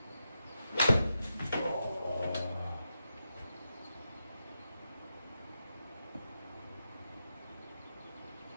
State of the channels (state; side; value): inverted; both; correlation -0.87